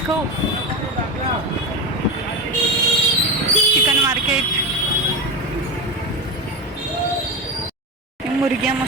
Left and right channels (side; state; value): both; normal; correlation 0.19